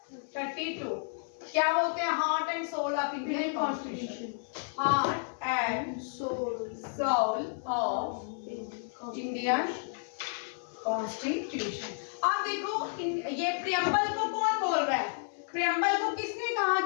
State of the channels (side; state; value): right; silent; 57 dB below the other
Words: 32 क्या बोलते हैं, heart and soul of Indian constitution, heart and soul of Indian constitution. अब देखो ये प्रीएम्बल को कौन बोल रहा है, प्रीएम्बल को किसने कहा